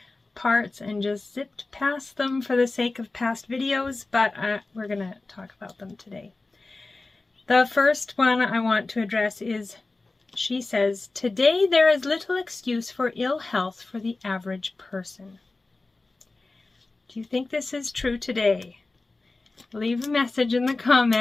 parts and just zipped past them for the sake of past videos, but we're gonna talk about them today. The first one I want to address is, she says, "Today there is little excuse for ill health for the average person." Do you think this is true today? Leave a message in the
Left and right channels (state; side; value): quieter; right; 3.4 dB